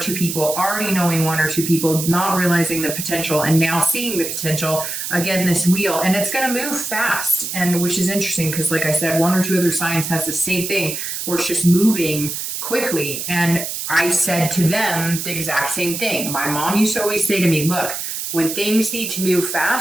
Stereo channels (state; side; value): noise; right; hiss, 5 dB below the sound